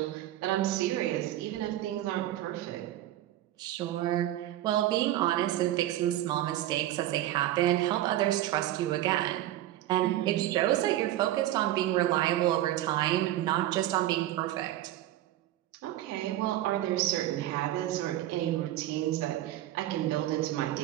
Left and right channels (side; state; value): left; quieter; 14.0 dB